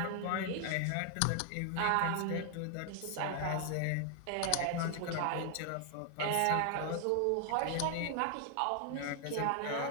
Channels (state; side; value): different; both; correlation 0.00